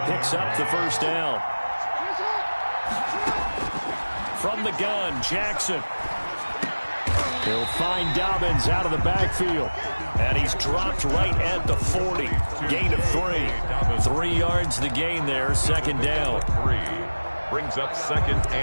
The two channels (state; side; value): inverted; both; correlation -1.00